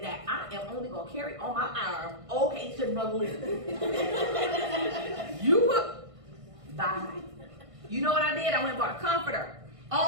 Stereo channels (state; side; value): late; left; 1.5 ms